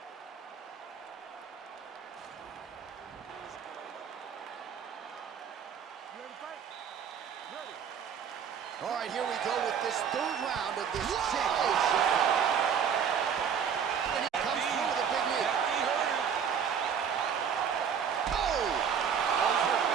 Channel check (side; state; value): left; quieter; 7.4 dB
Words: All right, here we go with this third round of this championship. And he comes through with a big knee. He hurt him. Oh! Oh, he's hurt